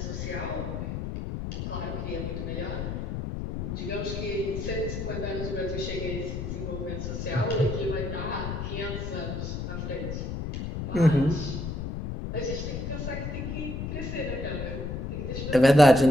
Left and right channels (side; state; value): left; noise; rumble, 4 dB below the sound